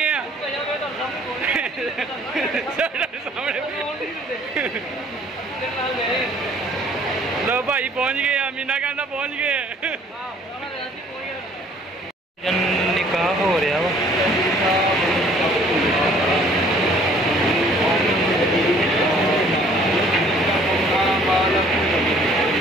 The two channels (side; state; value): both; normal; correlation 0.57